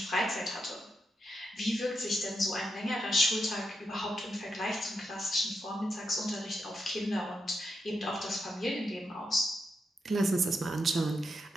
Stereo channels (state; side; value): normal; both; correlation 0.84